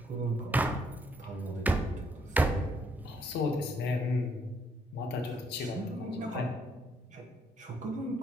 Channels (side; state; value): both; normal; correlation 0.70